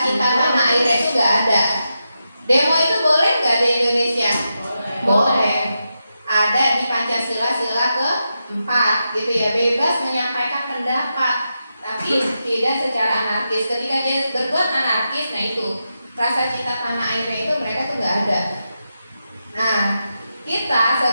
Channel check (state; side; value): inverted; both; correlation -0.87